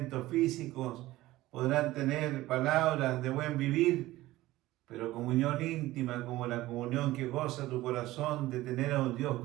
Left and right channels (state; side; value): quieter; left; 17.1 dB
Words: físicos, podrán tener palabras de buen vivir, pero comunión íntima, como la comunión que goza tu corazón de tener a un Dios